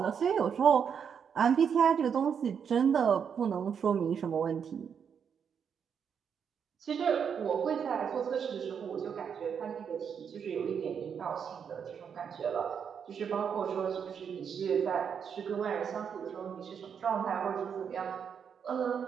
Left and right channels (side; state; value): left; quieter; 7.2 dB